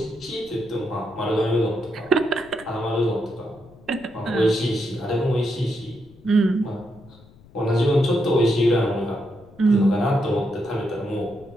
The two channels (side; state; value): left; noise; rumble, 24 dB below the sound